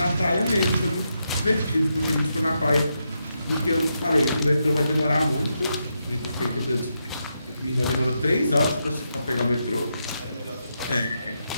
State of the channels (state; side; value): inverted; both; correlation -0.83